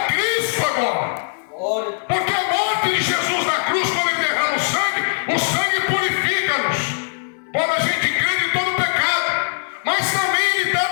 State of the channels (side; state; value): right; silent; 65 dB below the other